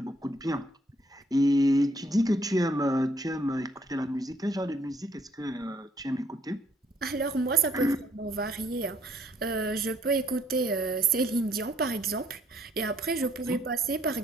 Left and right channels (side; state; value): both; normal; correlation 0.66